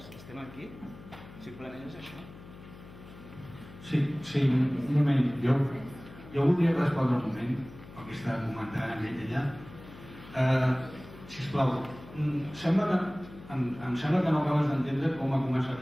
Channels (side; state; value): left; noise; hum, 18 dB below the sound